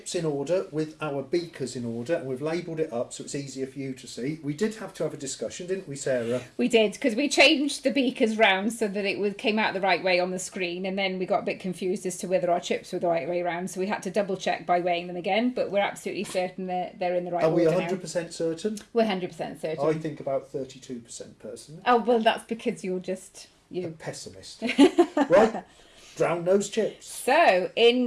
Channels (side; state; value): both; identical; correlation 1.00